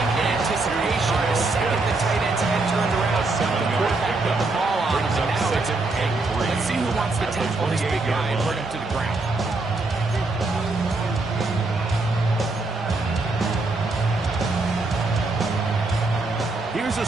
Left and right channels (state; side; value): quieter; left; 3.3 dB